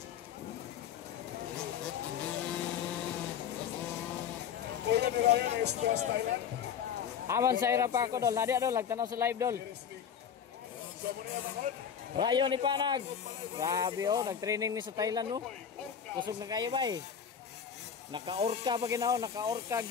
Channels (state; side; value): quieter; right; 7.9 dB